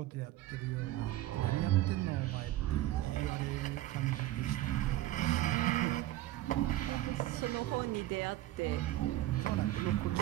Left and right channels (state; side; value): quieter; left; 15.2 dB